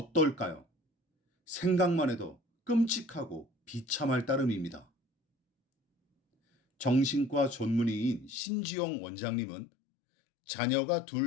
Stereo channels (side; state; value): right; drops out; at 8.4 s